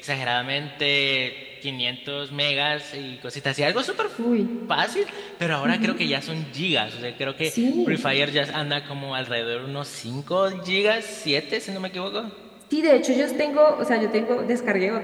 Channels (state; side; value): identical; both; correlation 1.00